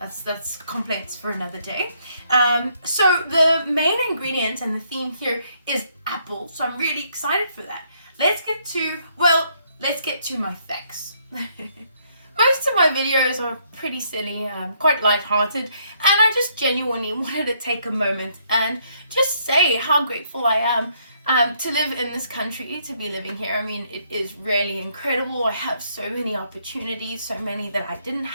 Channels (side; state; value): both; inverted; correlation -0.71